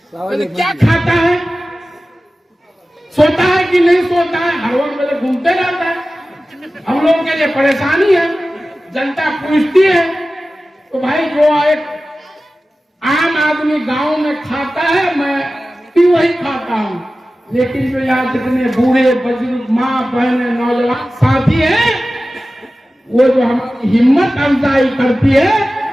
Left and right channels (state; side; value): normal; both; correlation 0.95